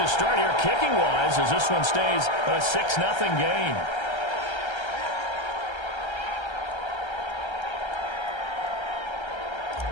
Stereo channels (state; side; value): late; right; 1.3 ms